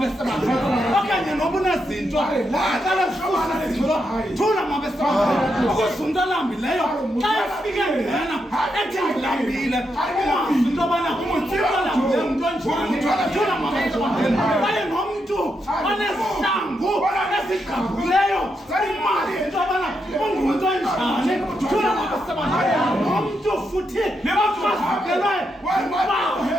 okanye noba unezinto aqala kufuza thula mabesebalo ukuzundalambileyo xa efike ngena ethi ngilambile ungazi into yobana umuthibalambileyo umntu onjani thula mabesebalo kwaye nomntu onesihlangu esigqabhuleyo imali into yobana ungumntu onjani thula mabesebalo nomntu futhi nebafakelwe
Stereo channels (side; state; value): both; normal; correlation 0.82